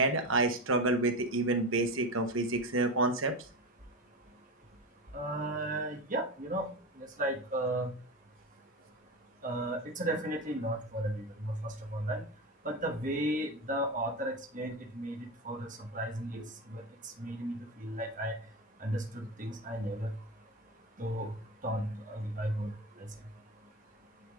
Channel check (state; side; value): normal; both; correlation 0.21